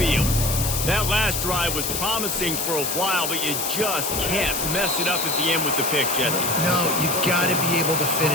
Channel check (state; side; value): noise; left; hiss, 2 dB below the sound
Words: That last drive was promising for a while, but you just can't mess it up at the end with the pick, Jesse. No, you got to be able to